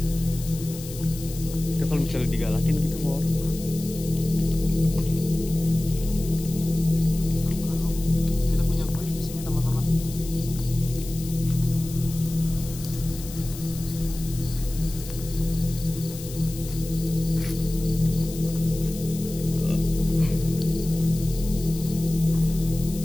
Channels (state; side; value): noise; left; hiss, 13 dB below the sound